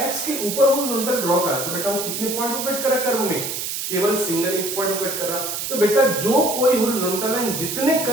x के ऊपर हॉरिजॉन्टल ड्रॉ करा तो बेटा वो कितने पॉइंट पे कट करा कर्व में, केवल सिंगल एक पॉइंट को कट कर रहा। तो बेटा जो कोई हॉरिजॉन्टल लाइन जितने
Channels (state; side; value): noise; right; hiss, 4 dB below the sound